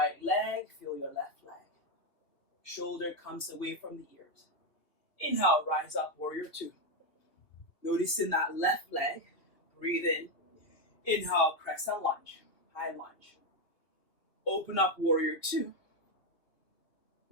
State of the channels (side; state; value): right; late; 2.7 ms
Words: leg. Feel your left leg. Shoulder comes away from the ears. Inhale, rise up, warrior 2. Noticing that left leg. Breathe in. Inhale, crescent lunge. High lunge. Open up, warrior 2.